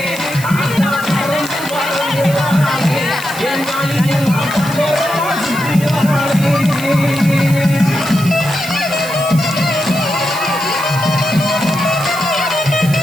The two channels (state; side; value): noise; right; hiss, 12 dB below the sound